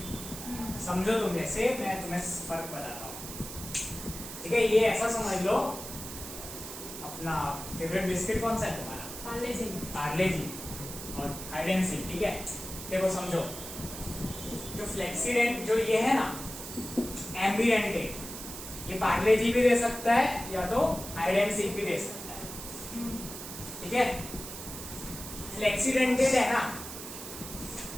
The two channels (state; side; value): noise; right; hiss, 10 dB below the sound